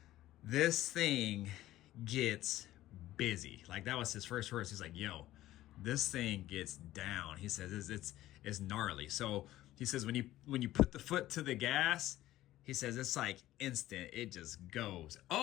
this thing gets busy. Like, that was his first words. He's like, yo, this thing gets down. He says it's gnarly. So he says when you put the foot to the gas, he says it's like instant. It just goes.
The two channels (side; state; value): right; quieter; 14.9 dB